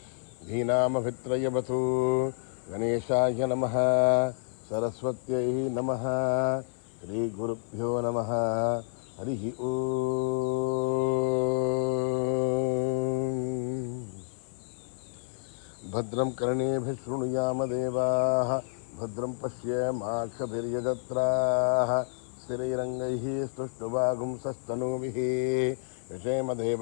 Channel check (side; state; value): right; silent; 58 dB below the other